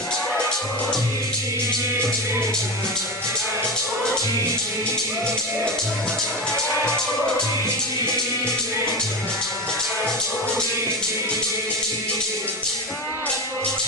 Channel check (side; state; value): both; normal; correlation 0.21